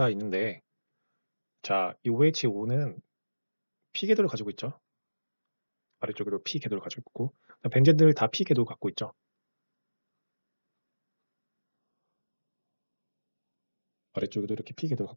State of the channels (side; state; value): both; inverted; correlation -1.00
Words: 있는데, 자, 이 OH5는 P궤도를 가지고 있죠. 아래쪽에도 P궤도를 가지고 있고, 벤젠들 다 P궤도 갖고 있죠. 아래쪽에도 이렇게 P궤도를